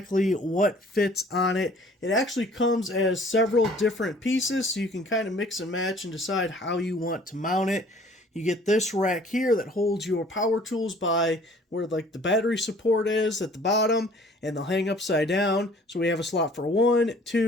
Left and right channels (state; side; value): normal; both; correlation 0.53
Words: what fits on it. It actually comes as several different pieces, so you can kind of mix and match and decide how you want to mount it. You get this rack here that holds your power tools by where like the battery support is at the bottom, and they'll hang upside down. So we have a slot for 1,